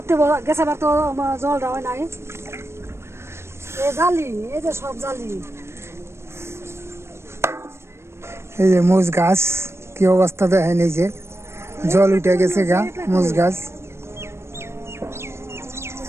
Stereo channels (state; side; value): late; left; 0.13 ms